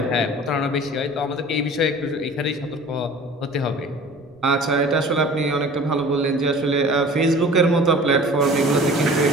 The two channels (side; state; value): right; noise; rumble, 30 dB below the sound